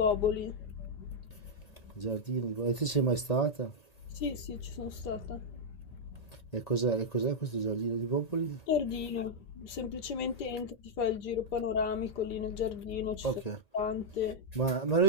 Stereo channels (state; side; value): late; right; 1.8 ms